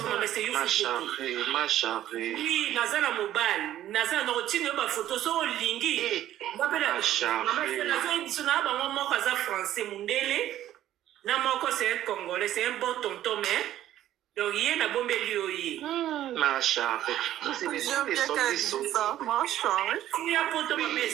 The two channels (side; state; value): left; quieter; 12.6 dB